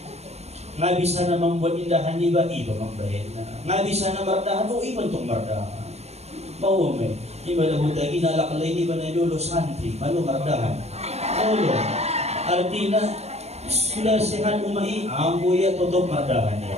Nga bisa na mambuat indahan di ba iba mamben na. Nga bisa na mardahan o iba itong mardahan. Maume. Iba na buta ginalakalay di ba na lolo santri. Malo mardahan. Lolo. Artina sudah sehat umai, ambuya tutup mardahan niya.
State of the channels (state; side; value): late; left; 0.31 ms